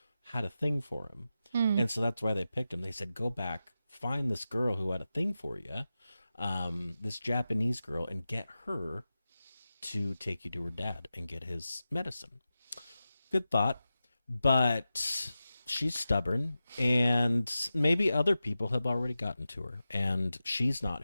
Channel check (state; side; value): inverted; both; correlation -0.93